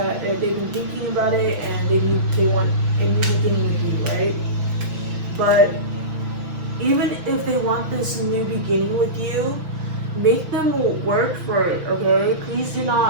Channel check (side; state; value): left; late; 5.7 ms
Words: been thinking about it, and they want a new beginning with you, right? But even if they want this new beginning with you, make them work for it, okay? Please do